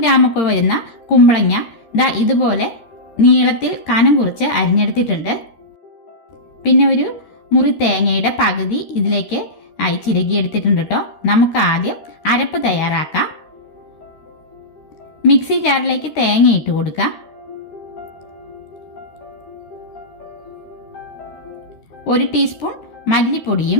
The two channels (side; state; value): right; late; 13 ms